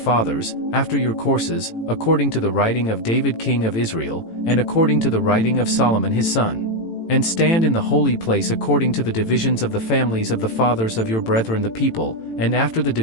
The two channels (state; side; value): late; right; 18 ms